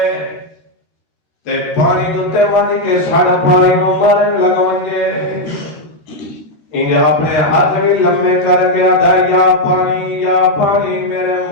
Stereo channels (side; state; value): right; late; 13 ms